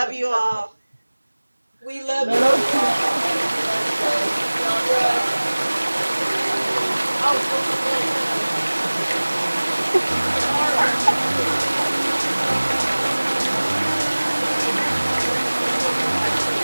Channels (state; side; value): inverted; both; correlation -1.00